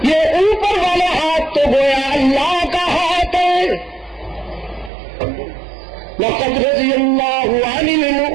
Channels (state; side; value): drops out; left; at 4.9 s